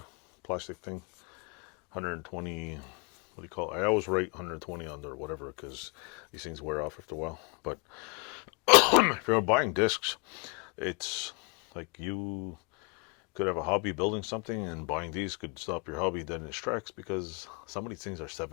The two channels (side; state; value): right; quieter; 31.8 dB